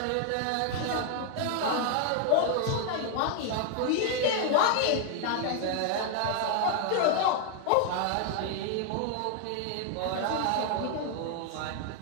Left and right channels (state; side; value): different; both; correlation 0.00